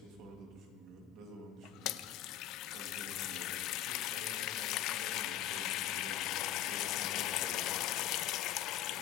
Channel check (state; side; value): quieter; right; 11.8 dB